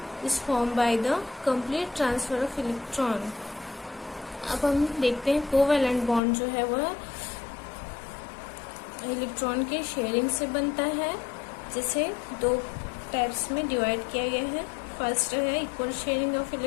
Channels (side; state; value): right; drops out; at 6.2 s